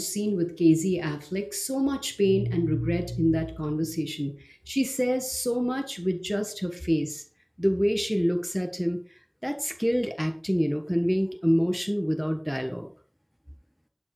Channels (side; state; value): both; identical; correlation 1.00